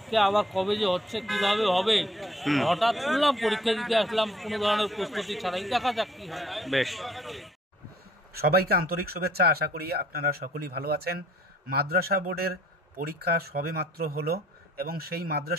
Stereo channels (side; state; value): both; normal; correlation 0.61